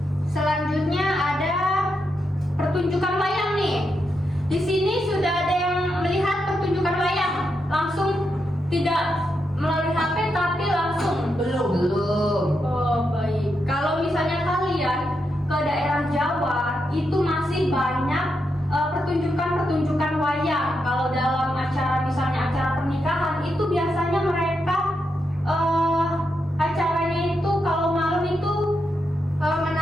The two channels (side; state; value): both; normal; correlation 0.84